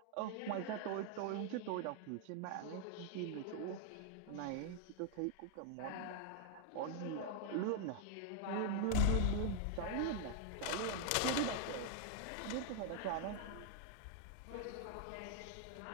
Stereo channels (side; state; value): both; different; correlation 0.00